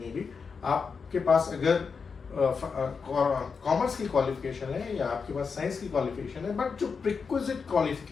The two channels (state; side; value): quieter; right; 5.4 dB